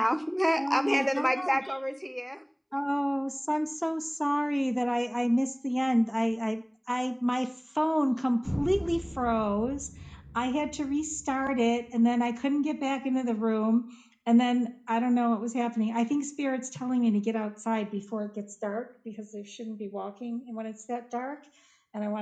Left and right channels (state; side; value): identical; both; correlation 1.00